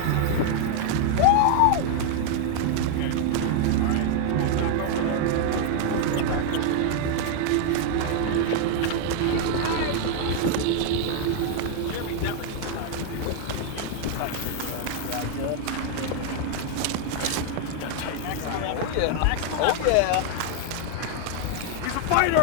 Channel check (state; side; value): different; both; correlation 0.00